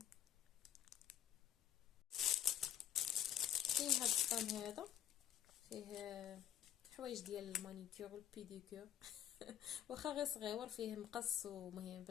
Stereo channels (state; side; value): quieter; right; 10.9 dB